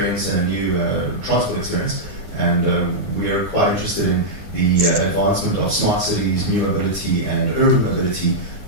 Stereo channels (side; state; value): left; late; 9.7 ms